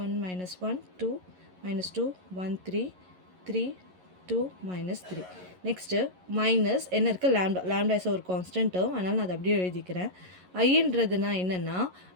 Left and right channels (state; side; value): late; left; 11 ms